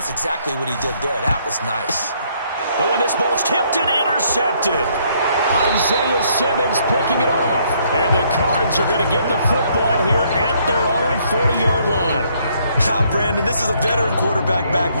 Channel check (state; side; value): inverted; both; correlation -0.68